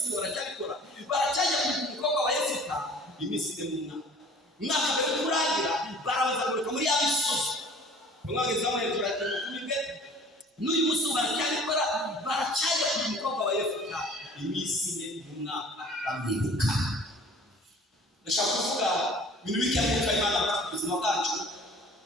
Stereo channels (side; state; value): both; normal; correlation 0.48